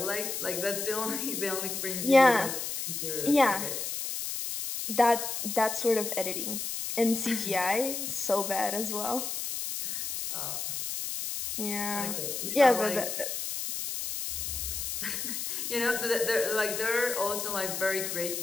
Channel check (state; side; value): noise; left; hiss, 4 dB below the sound